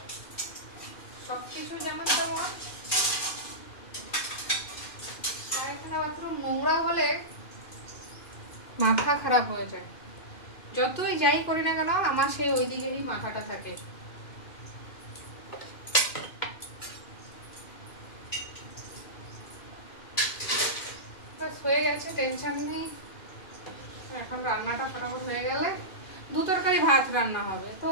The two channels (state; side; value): late; right; 2.4 ms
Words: সবকিছু যেমন তেমন, পায়খানা বাথরুম নোংরা হলে মাথা খারাপ হয়ে যায়। যতই যাই করি না কেন আমার সেই ওই দিকেরই মাথাটা থাকে। হয়ে গেছে, টেনশন নেই। এখন রান্নাটা ফটাফট হয়ে গেলে 2 তরকারি ভাত রান্না হবে, তো